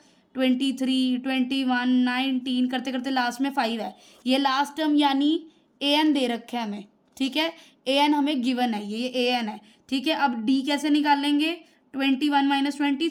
23, 21, 19 करते करते लास्ट में 5 है। ये लास्ट टर्म यानी an दे रखा है हमें। ठीक है, an हमें गिवन है, ये an है। ठीक है, अब d कैसे निकालेंगे, 21 माइनस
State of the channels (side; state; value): both; identical; correlation 1.00